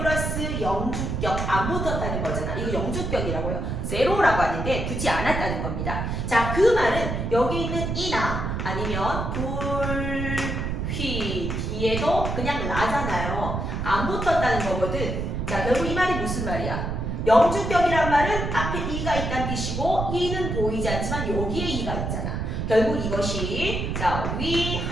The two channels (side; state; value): right; noise; rumble, 2 dB below the sound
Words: 영주격 안 붙었다는 거잖아. 이거 영주격이라고요. 제로라고 하는데 붙지 않았다는 겁니다. 자, 그 말은 여기 있는 이나 아니면 불휘 뒤에도 그냥 라잖아요. 안 붙었다는 거거든. 자, 결국 이 말이 무슨 말이야? 영주격이란 말은 앞에 이가 있다는 뜻이고 이는 보이지 않지만 여기에 이가 있잖아. 결국 이것이 자, 위